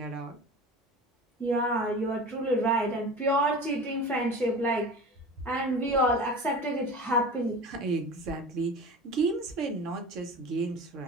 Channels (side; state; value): both; normal; correlation 0.34